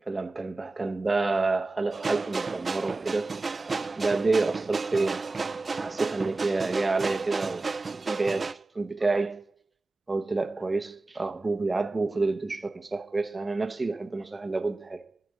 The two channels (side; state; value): left; quieter; 3.2 dB